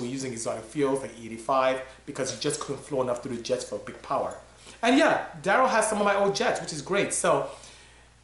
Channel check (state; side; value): identical; both; correlation 1.00